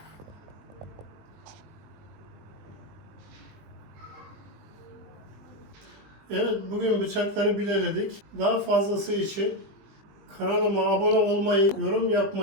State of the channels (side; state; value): left; late; 20 ms